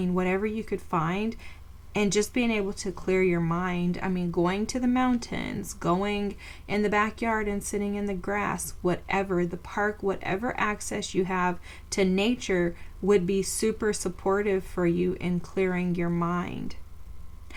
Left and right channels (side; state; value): both; identical; correlation 1.00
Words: whatever you could find, and just being able to clear your mind. I mean, going to the mountains, going in the backyard and sitting in the grass, whatever, the park, whatever access you have to nature would be super supportive for you in clearing your mind.